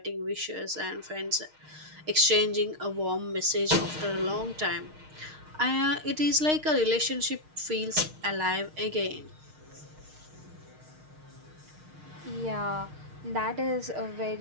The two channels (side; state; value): left; late; 6.5 ms